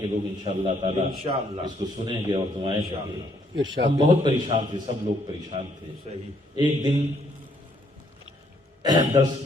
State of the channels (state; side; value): normal; both; correlation 0.68